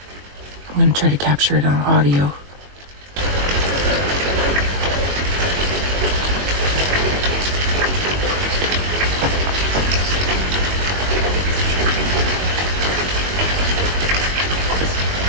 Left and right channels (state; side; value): late; left; 21 ms